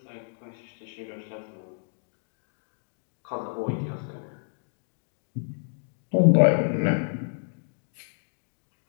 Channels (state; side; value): silent; right; digital silence